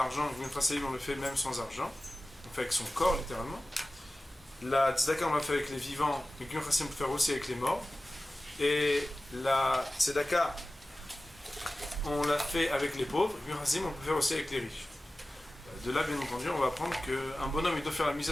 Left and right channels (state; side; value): normal; both; correlation 0.96